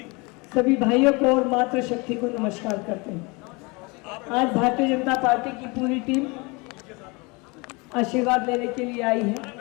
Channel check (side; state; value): right; quieter; 27.5 dB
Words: सभी भाइयों को और मातृशक्ति को नमस्कार करते हैं। आज भारतीय जनता पार्टी की पूरी टीम आशीर्वाद लेने के लिए आई